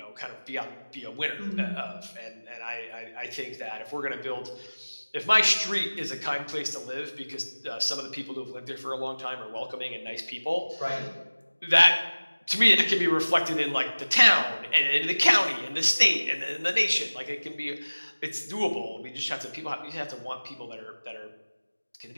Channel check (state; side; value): inverted; both; correlation -1.00